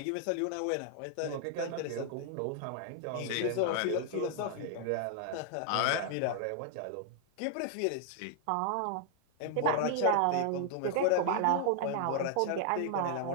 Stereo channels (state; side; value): different; both; correlation 0.00